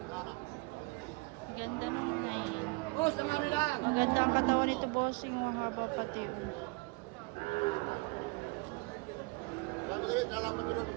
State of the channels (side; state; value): left; quieter; 27.3 dB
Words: Ganda ng inahin. Boss, nangaray lang. Maganda ang katawan nito, bossing. Ang haba pati.